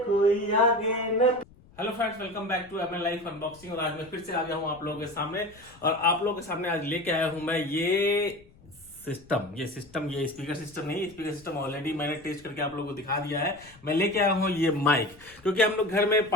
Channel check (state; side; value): noise; left; rumble, 25 dB below the sound